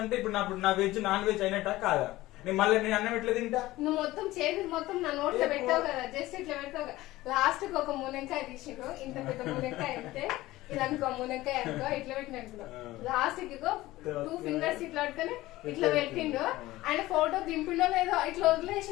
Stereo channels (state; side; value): quieter; right; 17.5 dB